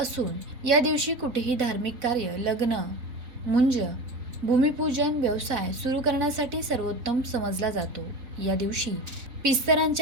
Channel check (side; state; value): left; late; 4.0 ms